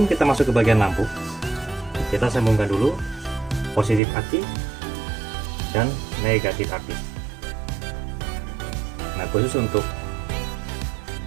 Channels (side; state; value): left; drops out; at 4.0 s